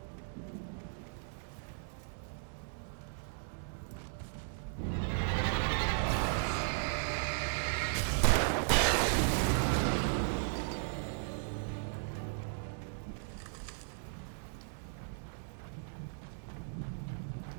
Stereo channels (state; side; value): silent; left; digital silence